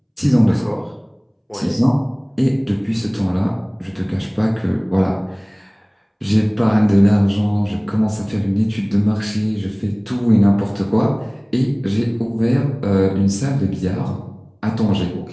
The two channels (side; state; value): both; identical; correlation 1.00